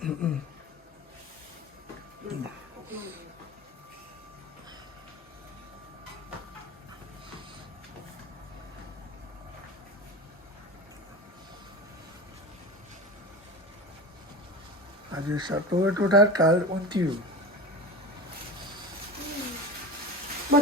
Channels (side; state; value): both; normal; correlation 0.29